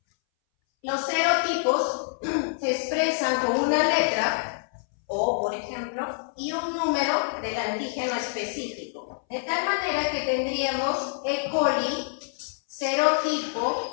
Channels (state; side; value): silent; right; 60 dB below the other